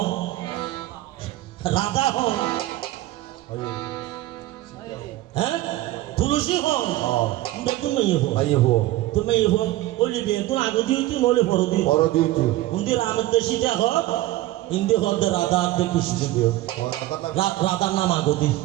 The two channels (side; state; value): left; quieter; 16.1 dB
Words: রাধা হন, হ্যাঁ তুলসী হন, বেতন মেয়ে হো ভাই হো তুমি মেয়ে হো ওলি বেতন আগে দিয়েছি নলে পর দিই বড় দিয়েছি উন্দি রামের সীতা হক ইন্দি হক রাধা দে কৃষ্ণ রাধার নাম আগদি